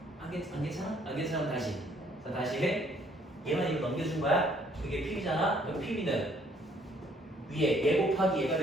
안 괜찮아? 안 괜찮으면 다시. 자, 다시 해. 얘만 이거 넘겨준 거야? 그게 PB잖아? 그럼 PB는 위에 얘 곱하기 얘가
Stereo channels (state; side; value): normal; both; correlation 0.64